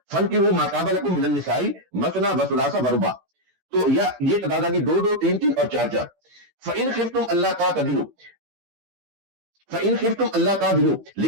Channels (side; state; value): left; late; 16 ms